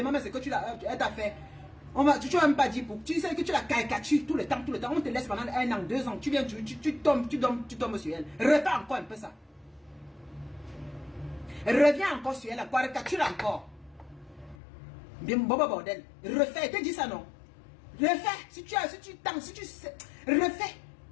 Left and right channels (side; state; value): right; drops out; at 14.6 s